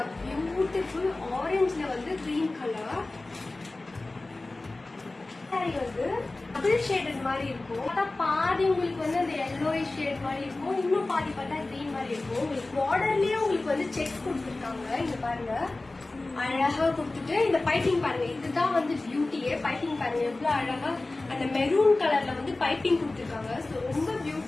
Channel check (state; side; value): quieter; right; 3.1 dB